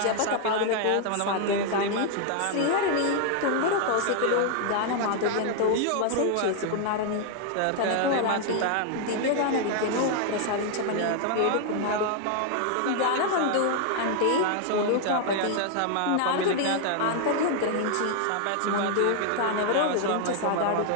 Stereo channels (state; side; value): different; both; correlation 0.00